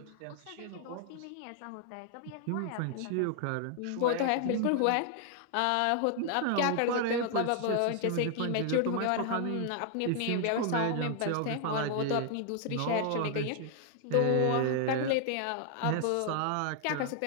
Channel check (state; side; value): different; both; correlation 0.00